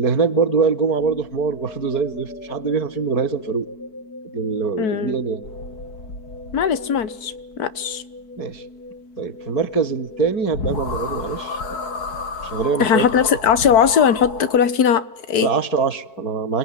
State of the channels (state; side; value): late; right; 4.6 ms